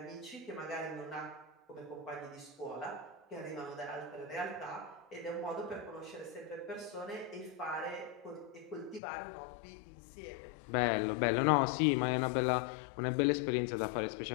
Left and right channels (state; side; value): drops out; right; at 9.0 s